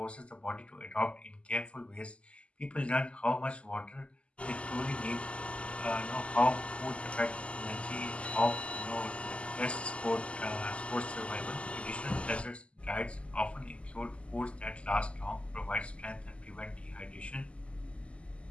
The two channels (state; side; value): late; right; 0.056 ms